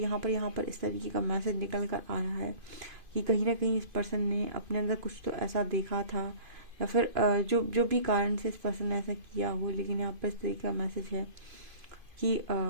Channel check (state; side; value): late; left; 2.5 ms